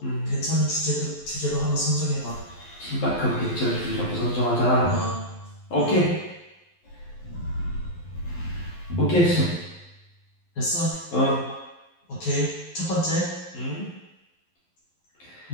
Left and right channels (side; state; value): right; late; 11 ms